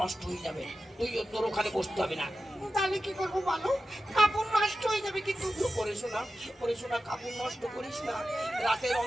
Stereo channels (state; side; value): normal; both; correlation 0.93